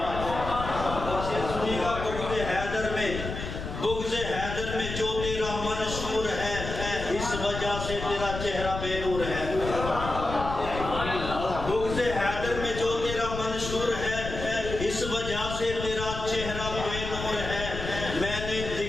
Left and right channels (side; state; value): left; noise; rumble, 7 dB below the sound